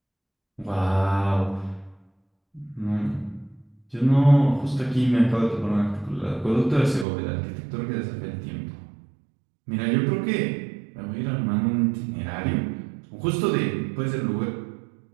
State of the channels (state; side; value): drops out; left; at 7.1 s